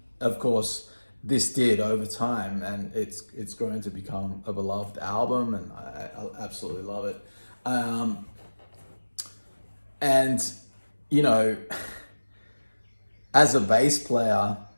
of course, this did over time, and it's going to become a beloved album, and I absolutely love it. And as a bass player,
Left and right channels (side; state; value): both; inverted; correlation -1.00